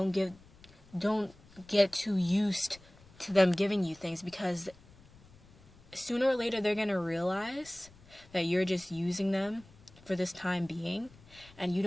get too used to them giving you things, because sooner or later they're going to realize that you're just using them for this time being. And you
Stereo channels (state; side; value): noise; left; rumble, 24 dB below the sound